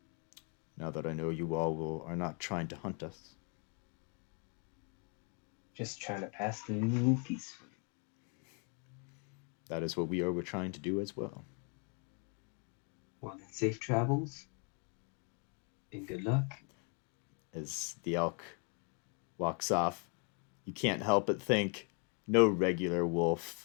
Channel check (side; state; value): right; quieter; 37.6 dB